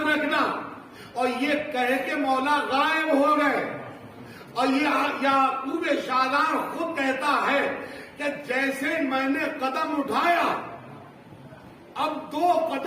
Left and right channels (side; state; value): both; identical; correlation 1.00